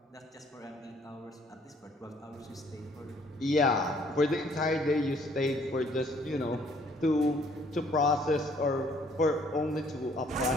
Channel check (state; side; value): normal; both; correlation 0.62